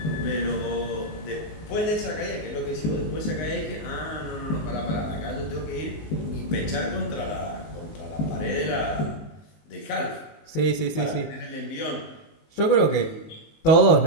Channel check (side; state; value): right; late; 19 ms